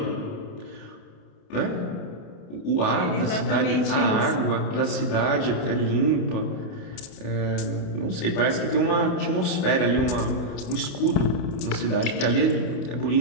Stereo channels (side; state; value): right; late; 28 ms